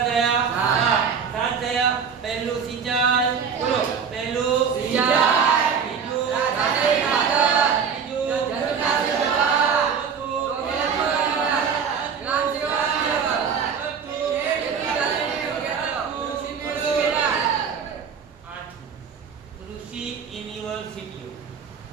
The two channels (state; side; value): quieter; left; 6.6 dB